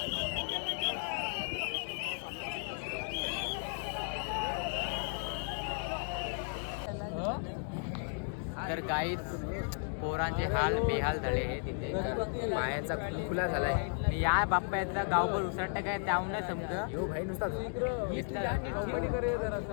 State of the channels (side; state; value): right; silent; 55 dB below the other